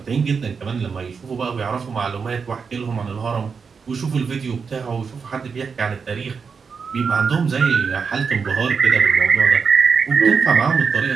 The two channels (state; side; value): quieter; left; 5.6 dB